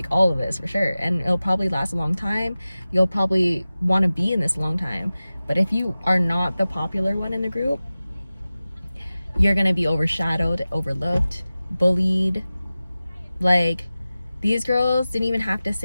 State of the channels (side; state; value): both; inverted; correlation -0.96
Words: all of this for sure, and it'll probably last a long time. You'll probably want to be in this a long time. But if you are not the popular one in the group, you're gonna be overshadowed, overlooked, bullied. Like these girls didn't even have to